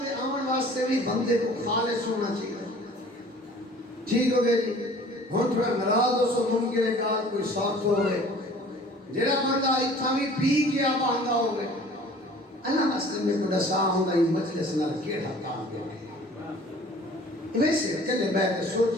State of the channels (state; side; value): normal; both; correlation 0.49